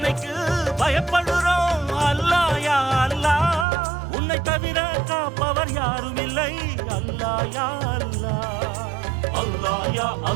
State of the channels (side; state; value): left; drops out; at 3.7 s